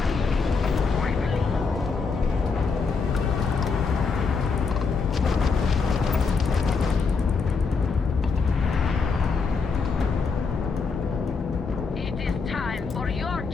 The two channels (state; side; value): quieter; right; 4.9 dB